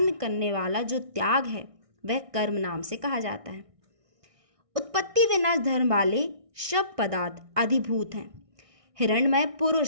करने वाला जो त्याग है वह कर्म नाम से कहा जाता है। उत्पत्ति विनाश धर्म वाले सब पदार्थ अधिभूत हैं। हिरण्मय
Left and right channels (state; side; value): late; left; 1.6 ms